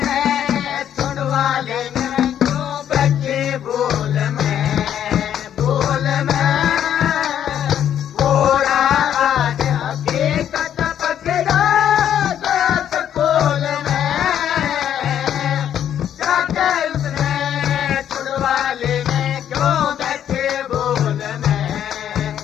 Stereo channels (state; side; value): quieter; right; 10.0 dB